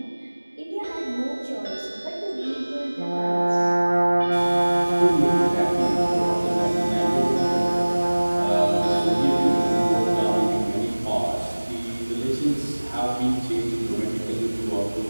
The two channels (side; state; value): both; inverted; correlation -1.00